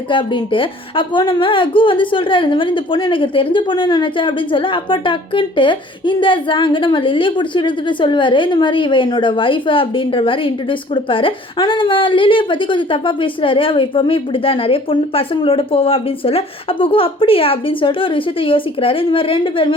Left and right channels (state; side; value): normal; both; correlation 0.52